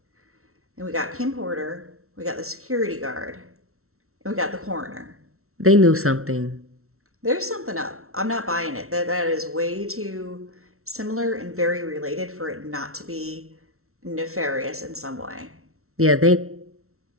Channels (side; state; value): left; late; 0.63 ms